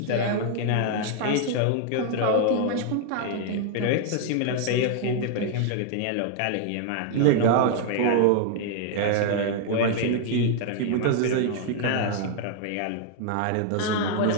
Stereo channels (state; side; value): different; both; correlation 0.00